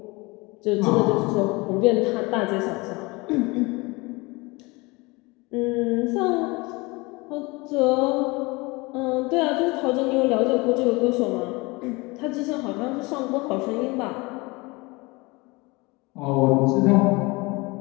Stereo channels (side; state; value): right; quieter; 24.8 dB